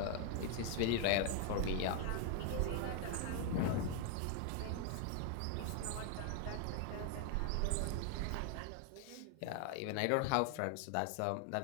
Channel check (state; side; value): different; both; correlation 0.00